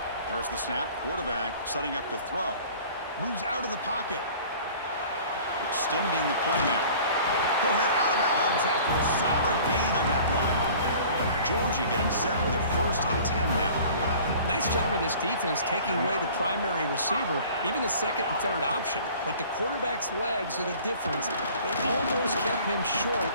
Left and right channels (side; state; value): both; inverted; correlation -0.47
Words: There's the snap. Quarterback setting up to throw. Moves out of the pocket. Extending the play now. He'll head out of bounds after a solid gain on that run. Georgia getting set with a first and 10 now. Nice job of this defense taking away the primary receiver, even the second and third option. But the quarterback's legs are the difference. They almost kept him short.